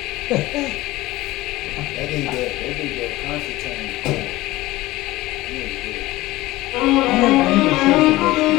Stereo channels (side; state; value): right; quieter; 18.3 dB